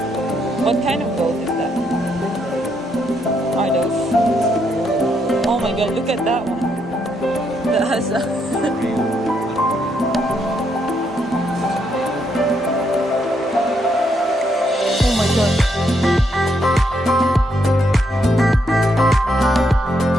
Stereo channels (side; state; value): both; normal; correlation 0.76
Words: What kind of goat is that? Are those? Oh my god, look at that one. That has a oh my god.